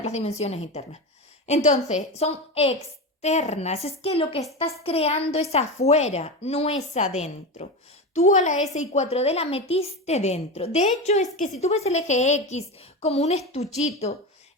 las dimensiones internas. Entonces, son externas. Es que lo que estás creando es afuera, no es adentro. Tú a la SI4D la metiste dentro. De hecho, es que si tú ves el eje X como un estuchito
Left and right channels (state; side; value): normal; both; correlation 0.21